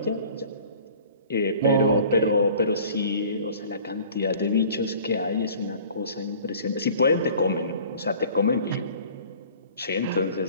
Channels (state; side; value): inverted; both; correlation -0.48